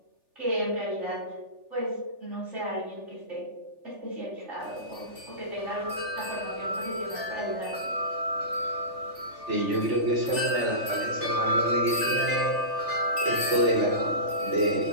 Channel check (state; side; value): late; left; 3.4 ms